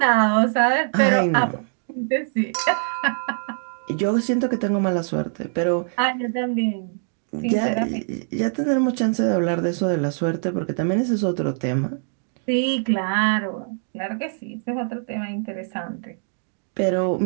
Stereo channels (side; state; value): left; silent; digital silence